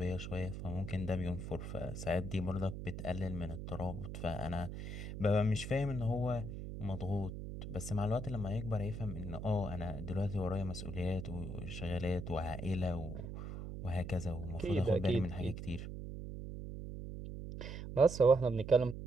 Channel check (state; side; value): noise; right; hum, 7 dB below the sound